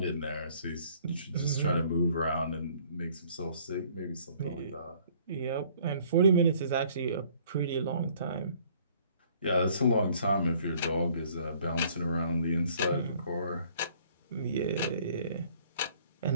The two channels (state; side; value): inverted; both; correlation -0.59